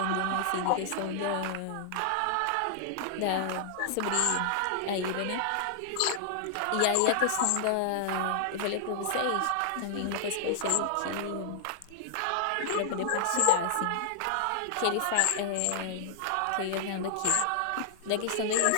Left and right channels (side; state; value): both; different; correlation -0.01